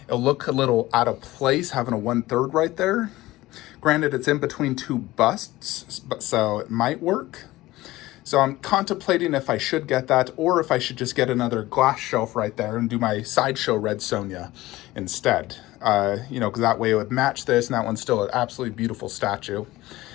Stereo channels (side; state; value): right; quieter; 17.8 dB